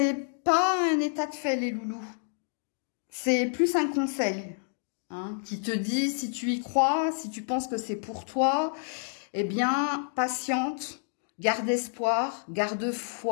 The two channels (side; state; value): right; silent; digital silence